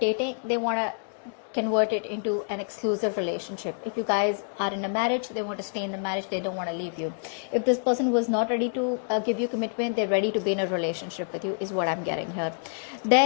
they want to convert it into an exclusive relationship. If you guys are in a marriage, they want to stay in the marriage, they don't want to leave you. If this person was not ready to give you commitment, they're ready to be in a relationship with you, is what I'm getting here.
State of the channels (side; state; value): right; silent; 60 dB below the other